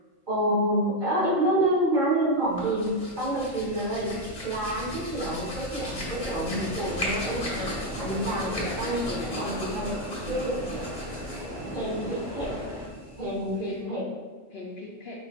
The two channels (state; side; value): normal; both; correlation 0.05